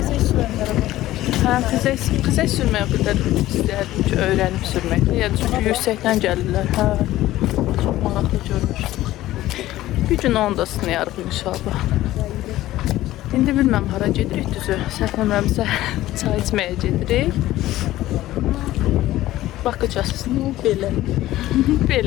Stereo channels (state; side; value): quieter; right; 15.4 dB